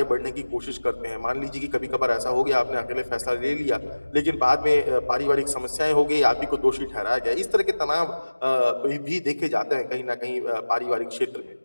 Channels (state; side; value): inverted; both; correlation -1.00